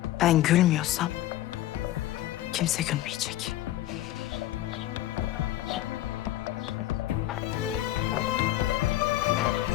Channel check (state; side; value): quieter; right; 14.4 dB